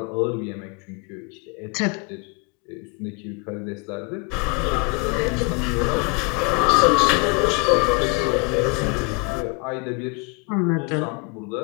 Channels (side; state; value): right; quieter; 30.8 dB